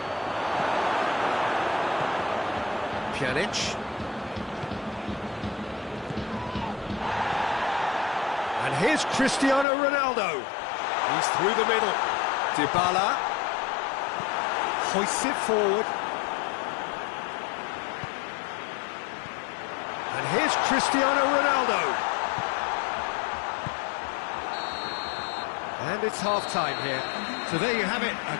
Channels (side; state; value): right; drops out; at 9.7 s